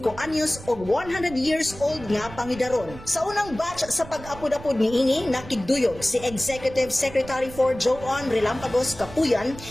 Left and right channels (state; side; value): noise; right; rumble, 15 dB below the sound